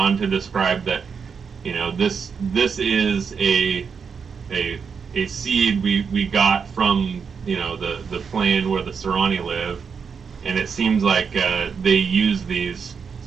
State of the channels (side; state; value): left; quieter; 6.1 dB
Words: to describe that this is a seed we got from the plane where the Serani live, and it seems like they use these